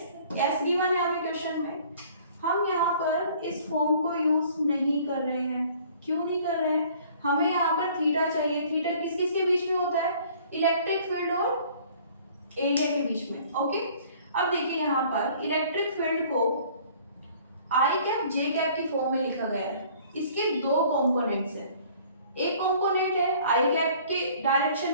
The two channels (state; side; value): inverted; both; correlation -0.54